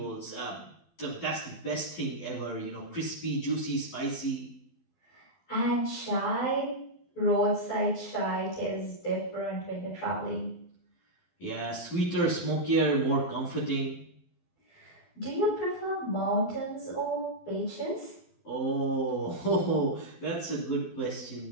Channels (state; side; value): late; right; 12 ms